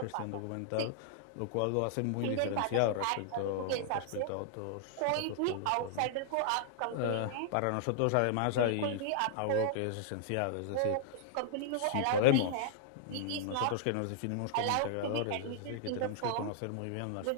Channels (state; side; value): different; both; correlation -0.01